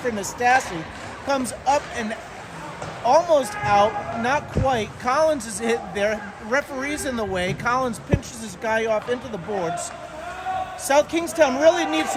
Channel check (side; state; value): both; identical; correlation 1.00